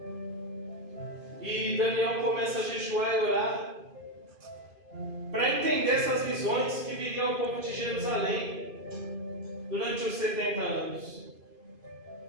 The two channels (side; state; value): left; late; 2.5 ms